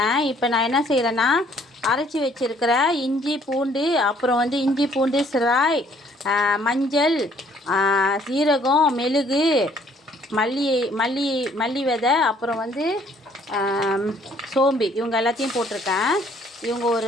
இப்போ நான் என்ன செய்கிறேன்னா அரைச்சி வச்சுருக்கிற இஞ்சி பூண்டு, அப்புறம் இஞ்சி பூண்டு சிராய், மஞ்சள், சீரகம், மெழுகு, மல்லி விதை, அப்புறம் சோம்பு, இவங்க எல்லாத்தையும் போட்டிருக்கேன். இவங்க ஒரு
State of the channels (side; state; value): both; normal; correlation 0.62